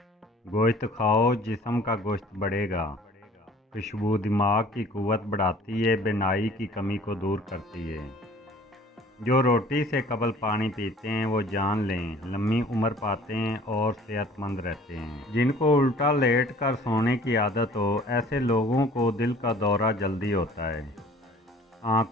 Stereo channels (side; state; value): both; normal; correlation 0.51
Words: گوشت کھاؤ، جسم کا گوشت بڑھے گا۔ خوشبو دماغ کی قوت بڑھاتی ہے، بینائی کی کمی کو دور کرتی ہے۔ جو روٹی سے قبل پانی پیتے ہیں وہ جان لیں لمبی عمر پاتے ہیں اور صحت مند رہتے ہیں۔ جن کو الٹا لیٹ کر سونے کی عادت ہو، ایسے لوگوں کو دل کا دورہ جلدی ہوتا ہے۔